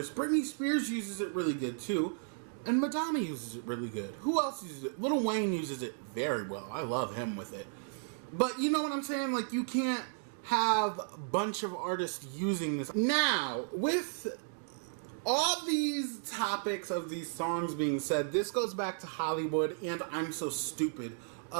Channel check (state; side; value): silent; left; digital silence